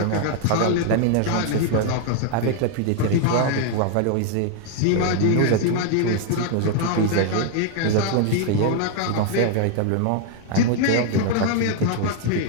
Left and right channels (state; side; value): different; both; correlation 0.00